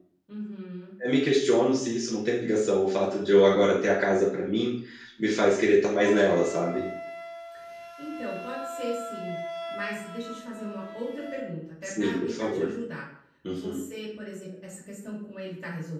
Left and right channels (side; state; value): both; identical; correlation 1.00